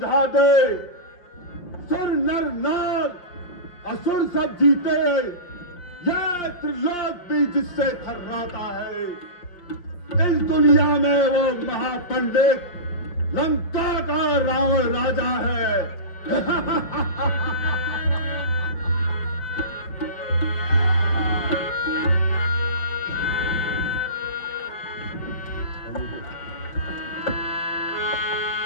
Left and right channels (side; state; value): right; late; 5.7 ms